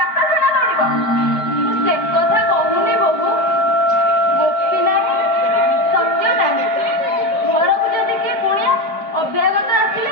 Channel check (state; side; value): late; right; 4.9 ms